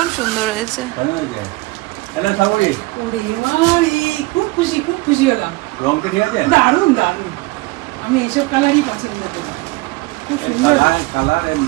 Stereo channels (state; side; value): quieter; left; 22.6 dB